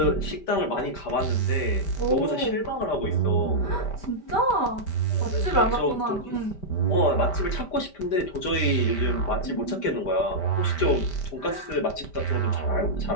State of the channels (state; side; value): late; right; 5.1 ms